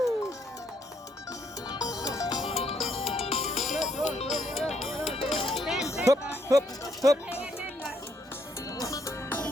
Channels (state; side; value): normal; both; correlation 0.72